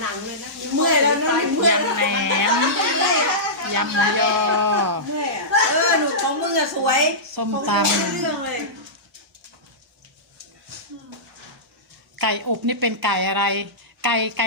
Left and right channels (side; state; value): both; normal; correlation -0.17